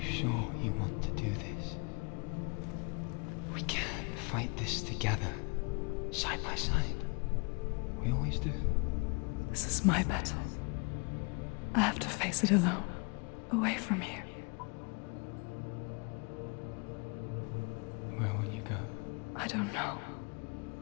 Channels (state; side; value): quieter; right; 32.7 dB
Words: you want to do this? We can fight this together, side by side. We always do. This is my battle. I have to face it alone, away from here. Where will you go? I don't know.